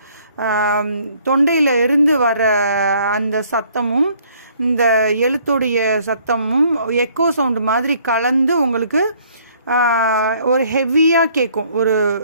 தொண்டையில் இருந்து வர அந்த சத்தமும் இந்த எழுத்துடைய சத்தமும் எக்கோ சவுண்டு மாதிரி கலந்து உங்களுக்கு ஒரு ஹெவியாக கேட்கும், ஒரு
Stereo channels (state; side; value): inverted; both; correlation -0.62